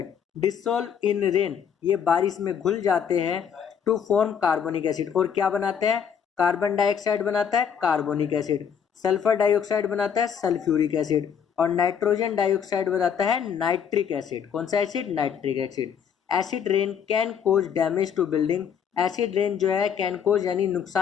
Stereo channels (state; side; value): quieter; right; 7.7 dB